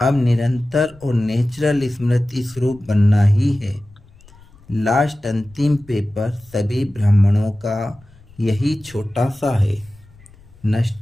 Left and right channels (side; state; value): left; noise; rumble, 26 dB below the sound